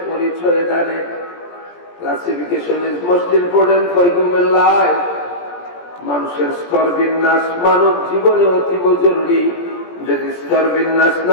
পরিচয় দানে। Classification is most important for human life. মানুষের স্তর বিন্যাস মানব জীবনে অতীব জরুরি। যদি স্তর বিন্যাস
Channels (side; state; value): right; late; 17 ms